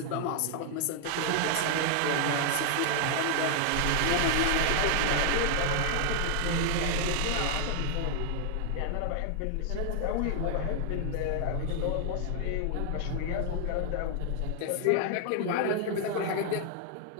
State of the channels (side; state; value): both; different; correlation 0.00